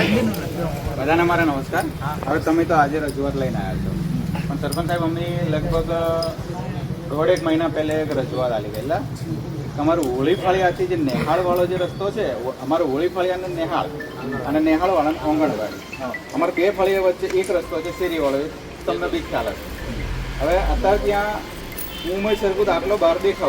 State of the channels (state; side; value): identical; both; correlation 1.00